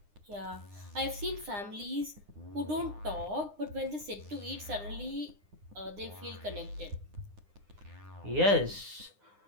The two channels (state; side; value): late; left; 9.8 ms